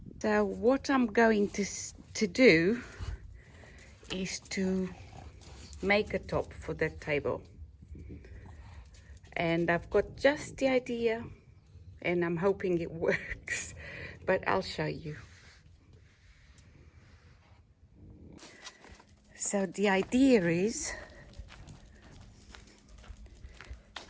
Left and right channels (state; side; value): identical; both; correlation 1.00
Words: So what I'm going to do is to make a top for that table, and I've got just the idea and I'm hoping it works, but I'll show you. So the idea is